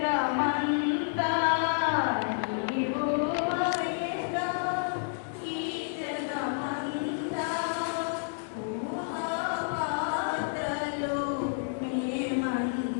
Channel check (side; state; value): right; silent; digital silence